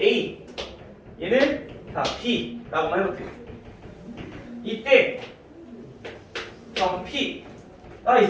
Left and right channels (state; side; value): identical; both; correlation 1.00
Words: A 얘는 자, B라고 한번 해볼게요. 이때 점 P가